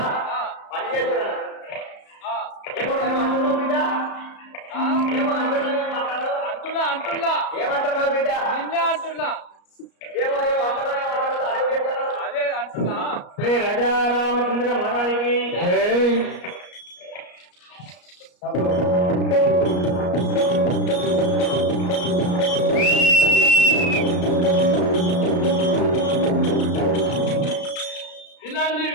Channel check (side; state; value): right; late; 34 ms